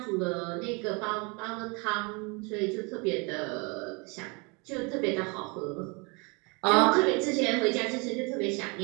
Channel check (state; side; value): quieter; left; 30.3 dB